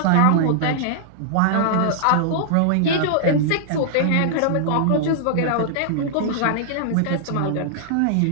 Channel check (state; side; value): different; both; correlation -0.01